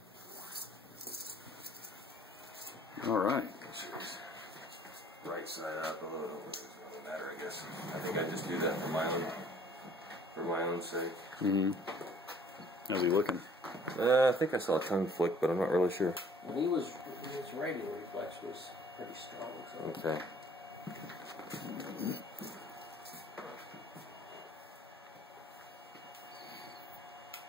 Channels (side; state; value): both; normal; correlation 0.56